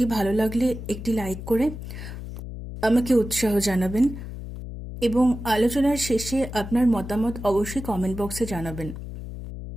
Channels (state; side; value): noise; left; hum, 9 dB below the sound